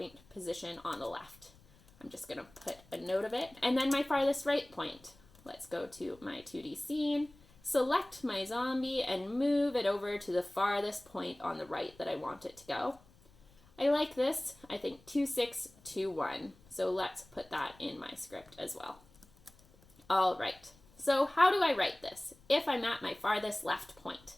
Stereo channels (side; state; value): left; noise; rumble, 27 dB below the sound